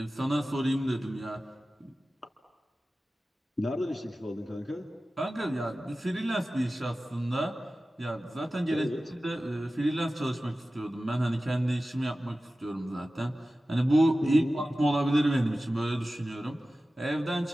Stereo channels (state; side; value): normal; both; correlation 0.95